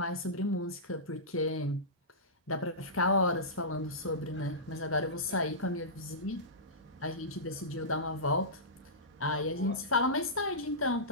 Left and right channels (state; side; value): normal; both; correlation -0.18